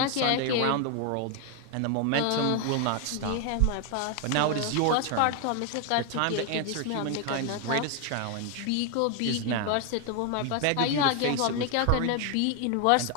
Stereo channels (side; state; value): both; different; correlation 0.01